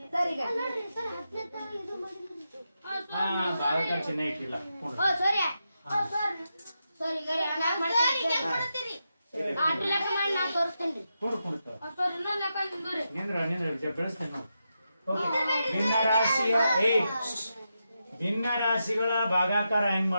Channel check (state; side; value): inverted; both; correlation -0.87